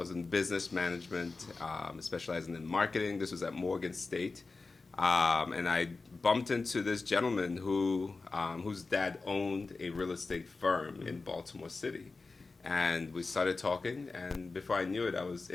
in business management, specializing in marketing. This was at Morgan State. And I bumped into this gentleman whose dad owned a real estate firm in Baltimore City. And we started talking, and before I knew it, I was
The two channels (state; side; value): quieter; right; 3.9 dB